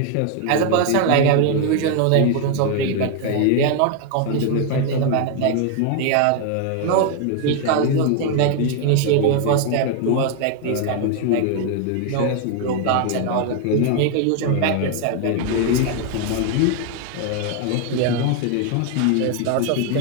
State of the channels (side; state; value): both; different; correlation 0.01